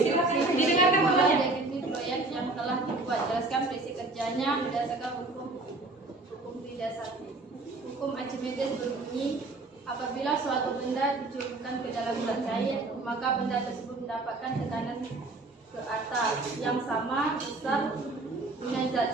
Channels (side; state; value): left; quieter; 3.2 dB